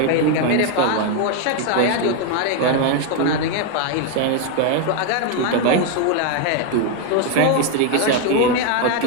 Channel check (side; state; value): both; different; correlation 0.01